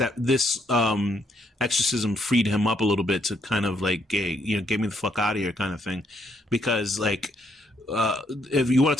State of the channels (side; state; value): both; normal; correlation 0.73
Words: this exorcism freed him up a little bit to kind of like get me the fuck out of here kind of thing. Because like if you want